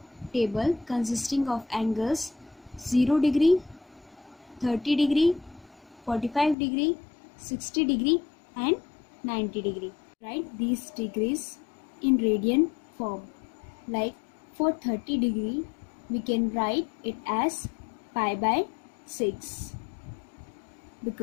table consisting of angles 0 degree, 30 degree, 45 degree, 60 degree and 90 degree. Write these degrees in radian form. Like for 30 degree, we can write it as pi by 6,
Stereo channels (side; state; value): right; drops out; at 6.6 s